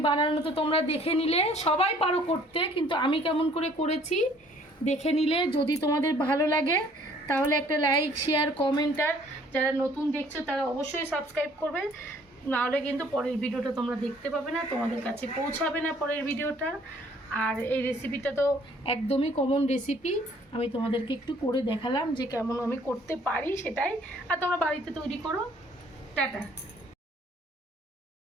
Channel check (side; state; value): both; normal; correlation 0.58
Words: বানানো তো তোমরা দেখে নিলে, সবাই পারো করতে, কিন্তু আমি কেমন করে করেছি দেখে নিলে। যদি তোমাদের ভালো লাগে তাহলে একটা লাইক, শেয়ার, কমেন্ট, আর যারা নতুন দেখছো তারা অবশ্যই সাবস্ক্রাইব করবে, নাহলে কিন্তু পরের ভিডিওটা তোমরা দেখতে পাবে না, তোমাদের কাছে পৌঁছাবে না পরের ভিডিওটা। আর এই রেসিপিটা তো একদমই কমন রেসিপি, আমি তোমাদেরকে একটু করে দেখালাম যে কেমন আমি করতে পারি সেটাই। আর তোমরা বাড়িতে তৈরি করো। টাটা।